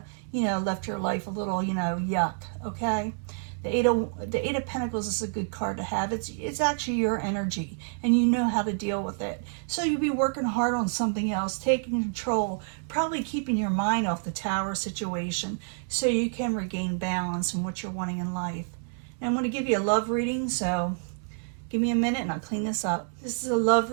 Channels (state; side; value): silent; left; 59 dB below the other